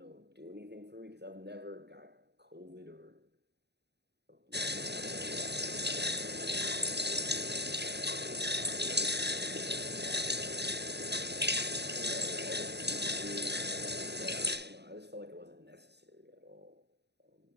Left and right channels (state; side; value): late; left; 0.49 ms